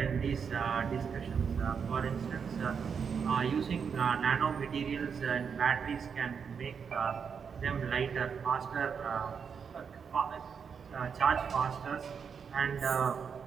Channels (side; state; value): left; quieter; 6.5 dB